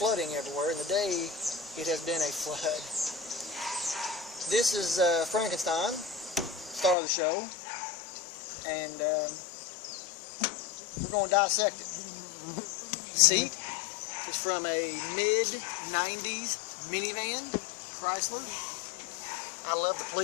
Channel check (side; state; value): right; drops out; at 7.0 s